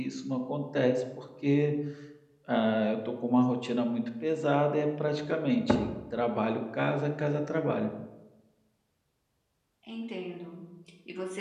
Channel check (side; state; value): both; identical; correlation 1.00